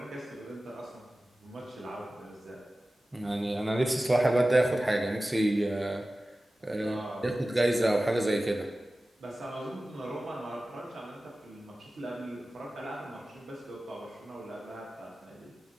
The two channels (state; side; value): normal; both; correlation 0.96